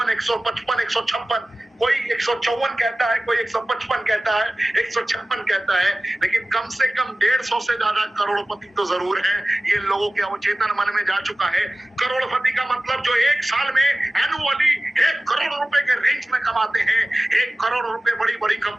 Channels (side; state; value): both; normal; correlation 0.97